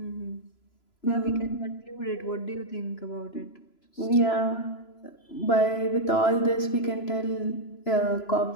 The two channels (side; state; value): right; late; 3.0 ms